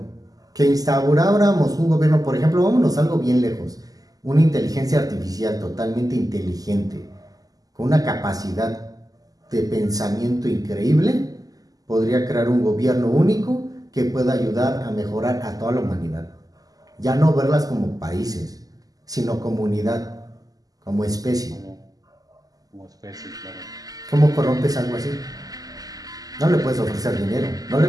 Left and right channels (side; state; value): left; late; 0.17 ms